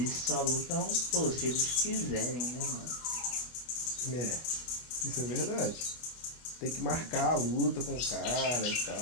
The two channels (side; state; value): right; late; 25 ms